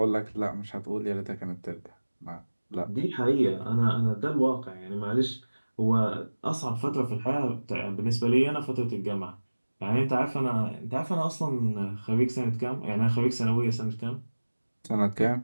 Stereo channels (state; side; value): inverted; both; correlation -1.00